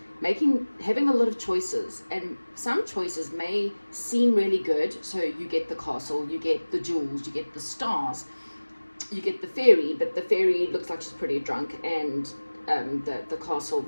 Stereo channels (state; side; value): inverted; both; correlation -1.00